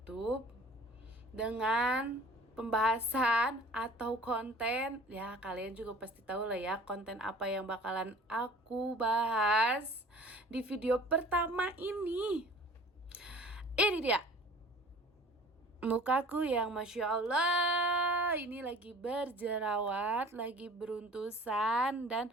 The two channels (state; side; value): normal; both; correlation 0.47